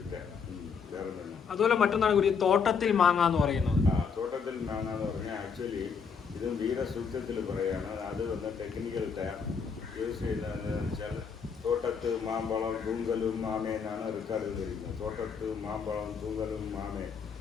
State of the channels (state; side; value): quieter; right; 6.0 dB